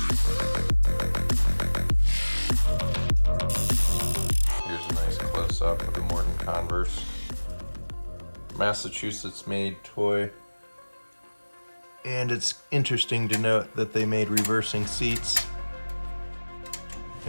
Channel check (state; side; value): inverted; both; correlation -1.00